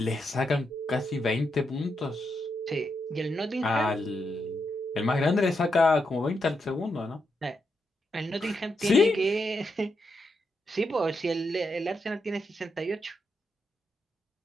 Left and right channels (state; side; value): normal; both; correlation 0.83